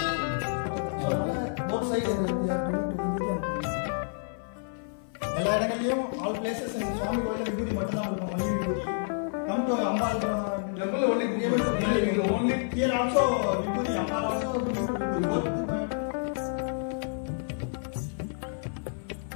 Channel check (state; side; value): silent; right; 56 dB below the other